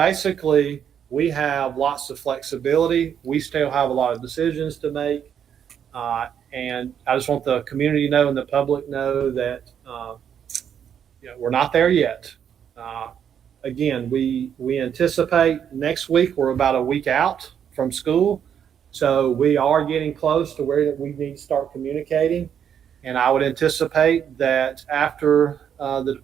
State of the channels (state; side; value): quieter; left; 8.5 dB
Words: we have lots of flexibility. We still have a lot of decisions to make. And I just want the community to know and the public know that we're not there yet. Again, we anticipate next week we're about a week out from school. So we are getting close to where we need to start communicating. And I would anticipate that after the